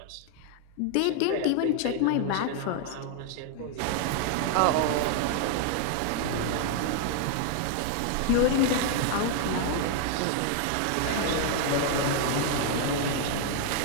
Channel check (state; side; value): different; both; correlation 0.00